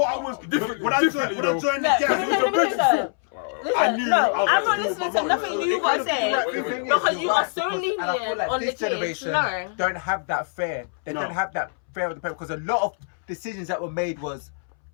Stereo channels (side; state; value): right; silent; 62 dB below the other